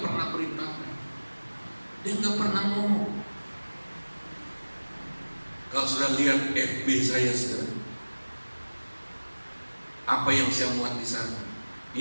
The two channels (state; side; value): inverted; both; correlation -1.00